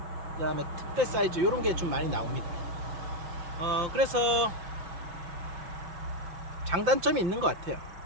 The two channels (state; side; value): late; left; 5.7 ms